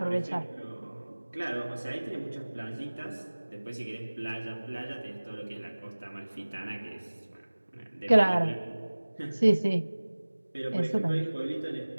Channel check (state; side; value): inverted; both; correlation -1.00